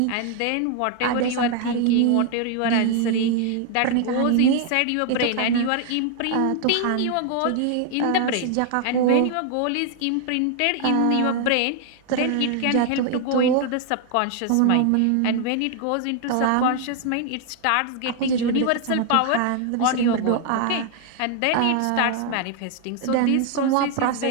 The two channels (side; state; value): both; different; correlation 0.00